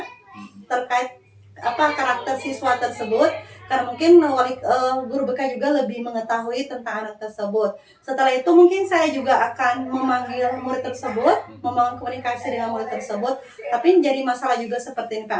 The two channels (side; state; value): both; identical; correlation 1.00